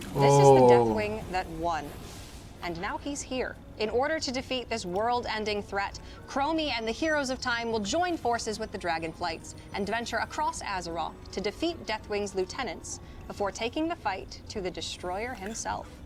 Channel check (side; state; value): both; identical; correlation 1.00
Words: is the Deathwing that won. And now he's here. In order to defeat this world-ending threat, Chromie and the Heroes of Time will join forces with the Dragonflights and venture across Azeroth to defeat Deathwing's lieutenants before taking the fight to the Destroyer himself.